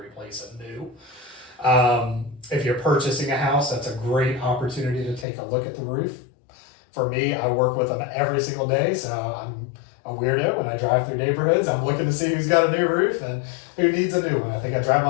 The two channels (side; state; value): right; drops out; at 5.2 s